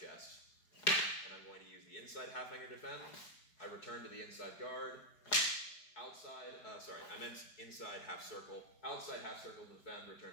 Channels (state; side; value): late; right; 4.7 ms